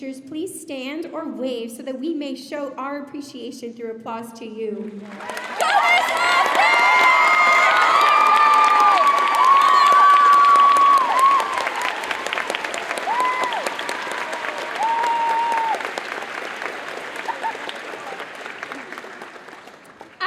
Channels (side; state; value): both; identical; correlation 1.00